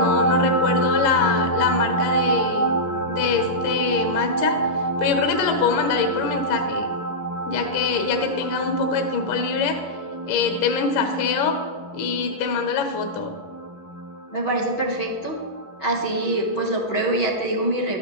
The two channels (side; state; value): right; late; 11 ms